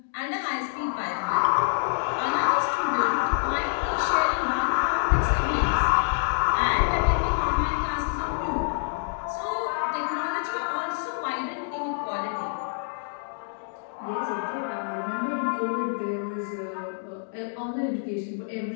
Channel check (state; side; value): silent; right; digital silence